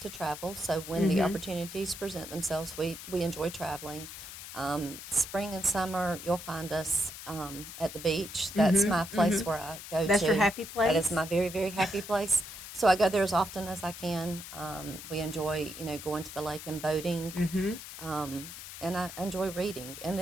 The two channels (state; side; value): noise; left; hiss, 11 dB below the sound